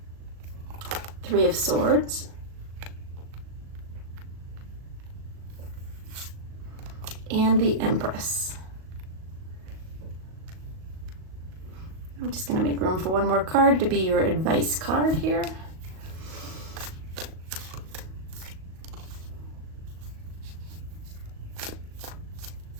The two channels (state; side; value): late; left; 38 ms